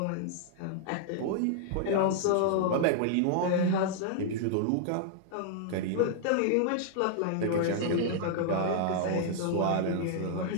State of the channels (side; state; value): both; different; correlation -0.01